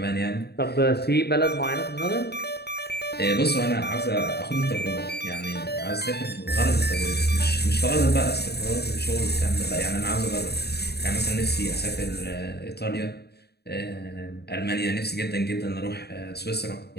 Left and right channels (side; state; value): right; late; 0.47 ms